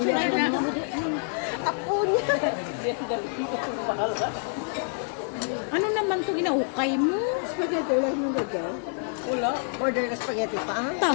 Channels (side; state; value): right; silent; 57 dB below the other